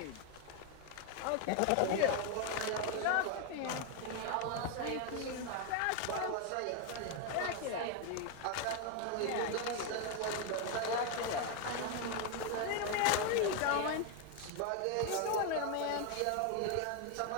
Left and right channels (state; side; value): different; both; correlation 0.01